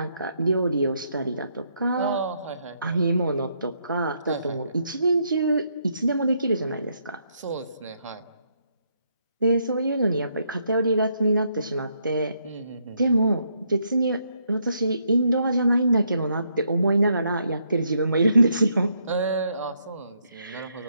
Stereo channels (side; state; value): both; inverted; correlation -0.75